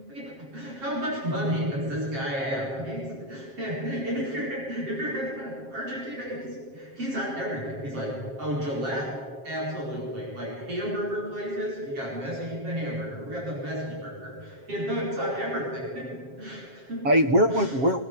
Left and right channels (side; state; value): left; late; 7.4 ms